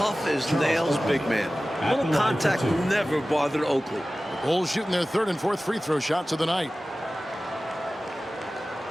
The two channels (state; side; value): normal; both; correlation 0.96